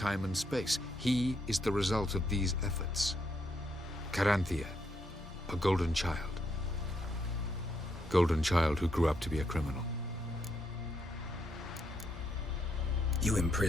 and space. He is the result of these efforts. Caranthir, a golden child. Golden child who grew up to be a criminal. You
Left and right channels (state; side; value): normal; both; correlation 0.77